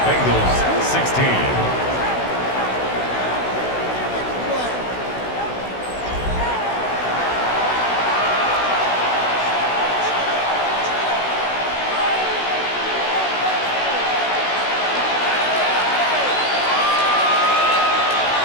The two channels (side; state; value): right; late; 16 ms